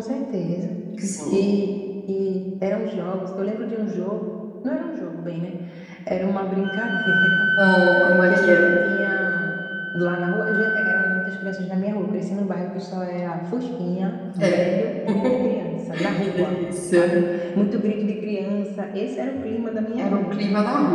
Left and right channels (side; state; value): both; identical; correlation 1.00